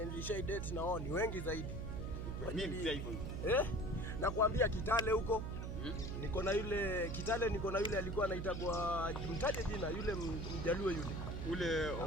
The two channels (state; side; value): noise; right; hum, 4 dB below the sound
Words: nilishai date na wao ni wengi zaidi. Mimi pia hivyo. Nakwambia Kitale huko. Niko na yule alikuwa anaitwa mtaje jina yule Mjaluo yule